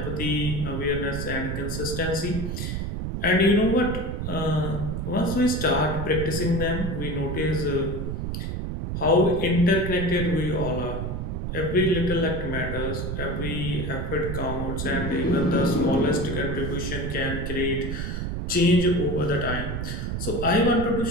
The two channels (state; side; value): noise; right; rumble, 3 dB below the sound